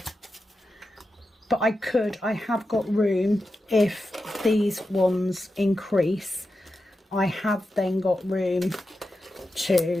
But I have got room if these ones increase. I have then got room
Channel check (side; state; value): both; normal; correlation 0.90